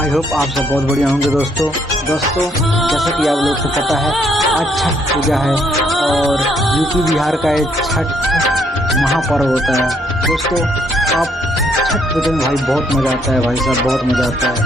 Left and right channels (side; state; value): both; normal; correlation 0.70